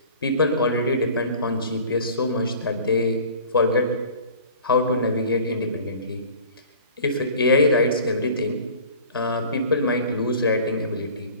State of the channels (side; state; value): both; inverted; correlation -0.45